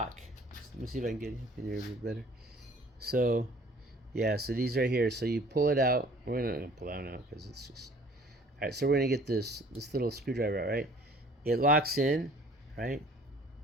Let me see if I can get in here a bit better. So, yeah, so these right here. So you pull it out. We're not going to pull that out because it's just... All right, so we're going to get this little screwdriver out, right? It locks in, right?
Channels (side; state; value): both; normal; correlation 0.52